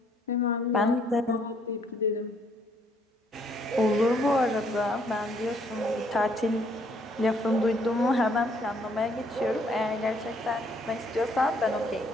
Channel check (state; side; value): normal; both; correlation 0.67